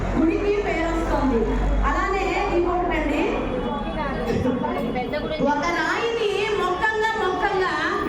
గుడికి పేరు వస్తుంది. అలానే ఇంకొకటండి, ఒక రాయిని మొక్కంగా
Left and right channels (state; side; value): identical; both; correlation 1.00